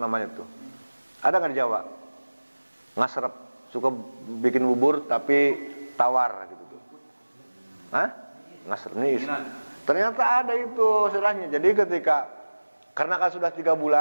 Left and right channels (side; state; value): both; inverted; correlation -1.00